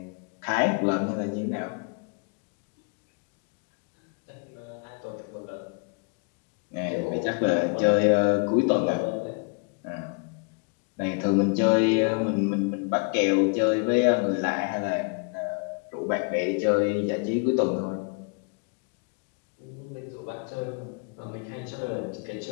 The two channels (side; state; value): right; quieter; 35.1 dB